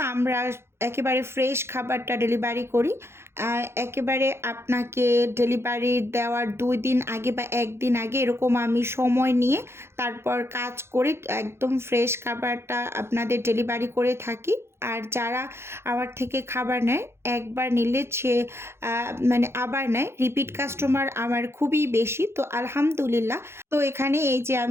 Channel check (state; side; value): late; left; 0.12 ms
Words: আমরা একেবারে ফ্রেশ খাবারটা ডেলিভারি করি। একেবারে আপনাকে ডেলিভারি দেওয়ার 2 দিন আগে বা 1 দিন আগে এরকম আমি সময় নিয়ে তারপর কাজ করে একদম ফ্রেশ খাবারটা আপনাদের ডেলিভারি করে থাকি। আর যারা আমার থেকে খাবার নেয়, একবার নিলে সে মানে আবার নেয়। রিপিট কাস্টমার আমার খুবই বেশি। তো আলহামদুলিল্লাহ। তো এখানে এই যে